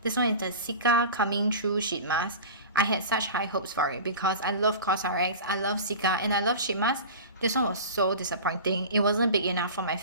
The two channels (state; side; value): inverted; both; correlation -0.34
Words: This one is the Sika Coming True sheet mask. I had such high hopes for it because I love CosRx, I love Sika, and I love sheet mask. This one was so disappointing. It wasn't big enough for my